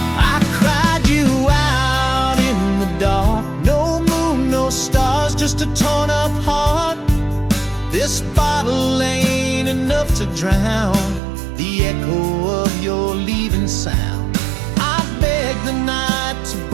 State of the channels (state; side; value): drops out; left; at 11.2 s